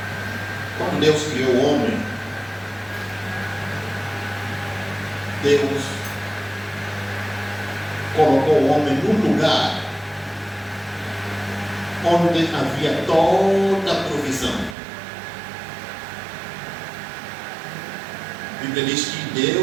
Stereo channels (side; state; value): left; drops out; at 14.8 s